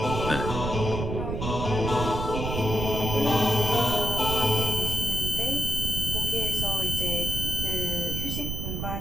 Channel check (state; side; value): noise; right; rumble, 3 dB below the sound